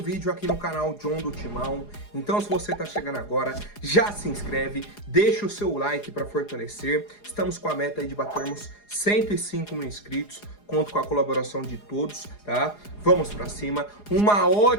aqui no canal John do Timão. Então se você tá chegando agora, já se inscreve, deixa o seu like para fortalecer. Estamos com a meta aí de batermos 105 mil inscritos, conto com a colaboração de todos, tá? Vamos pra cima, uma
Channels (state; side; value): late; right; 4.8 ms